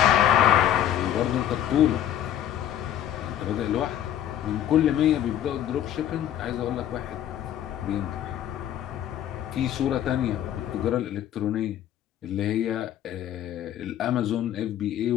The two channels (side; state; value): right; quieter; 11.1 dB